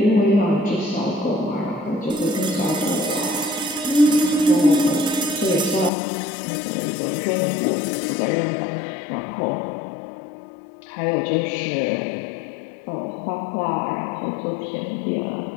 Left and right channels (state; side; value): drops out; right; at 5.9 s